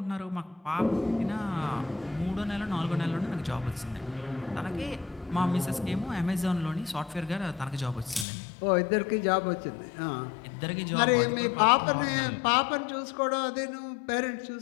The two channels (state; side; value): drops out; right; at 8.2 s